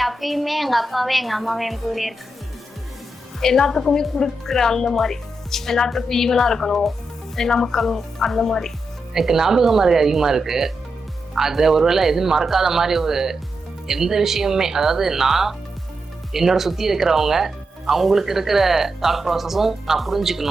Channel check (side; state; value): both; normal; correlation 0.86